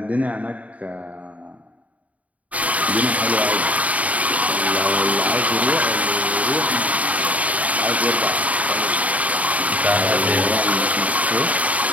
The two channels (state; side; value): late; left; 0.069 ms